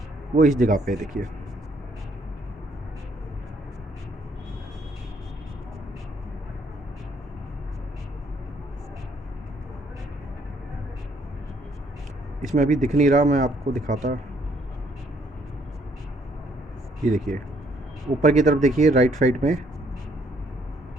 वो इस जगह पे देखिए। इसमें अभी दिख नहीं रहा, मैं आपको दिखाता। ये देखिए ऊपर की तरफ देखिए, राइट साइड में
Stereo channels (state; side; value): normal; both; correlation 0.67